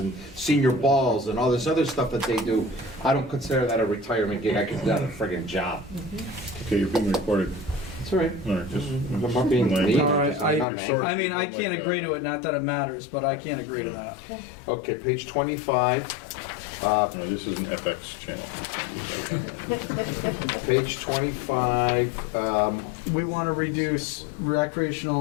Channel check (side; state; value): right; drops out; at 10.7 s